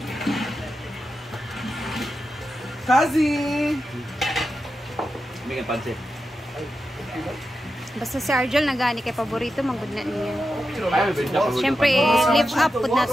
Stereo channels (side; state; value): both; normal; correlation 0.89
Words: Kazi! May nga pansit. Basta si Arjel nagani kay paborito manggod na niya. Ay, benta pa. Siyempre, live up pud na